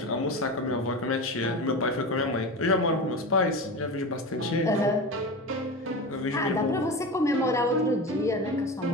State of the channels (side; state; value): both; normal; correlation 0.26